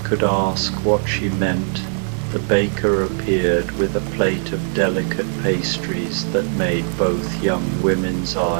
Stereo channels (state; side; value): silent; left; digital silence